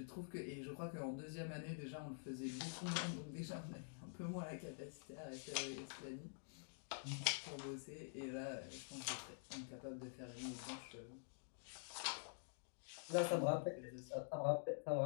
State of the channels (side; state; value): right; silent; digital silence